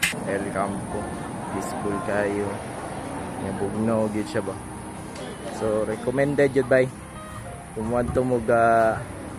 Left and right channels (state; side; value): identical; both; correlation 1.00